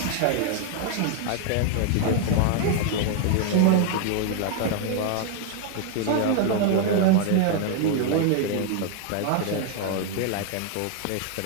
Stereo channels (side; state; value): both; different; correlation 0.00